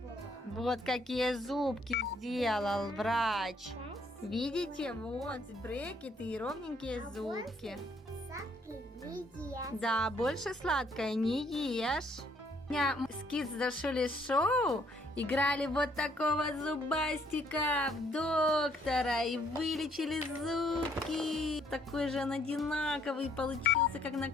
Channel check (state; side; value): normal; both; correlation 0.66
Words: Вот какие зубки сделал врач. Спасибо. Видите, вот брекеты и ровненькие зубки. Сладкий не ест. Да, больше сладкое не ешь. У меня с Kids Дашули шоу играли вот такого зубастика в доктора и вылечили зубки. Такой же он одинаковый получился, как на